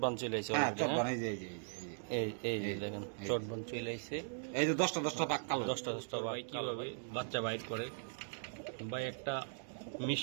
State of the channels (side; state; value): left; silent; digital silence